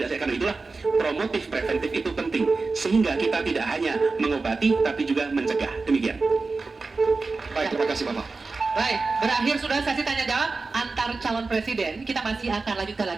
itulah promotif preventif itu penting, sehingga kita tidak hanya mengobati tapi juga mencegah. Demikian. Baik, terima kasih Bapak. Baik, berakhir sudah sesi tanya jawab antar calon presiden. Kita masih akan lanjutkan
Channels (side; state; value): left; quieter; 3.9 dB